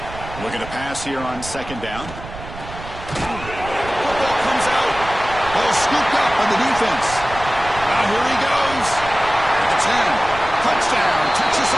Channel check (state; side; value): noise; right; rumble, 13 dB below the sound